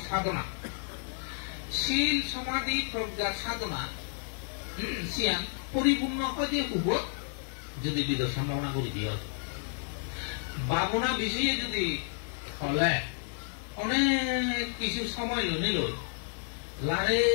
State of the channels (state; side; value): silent; right; 57 dB below the other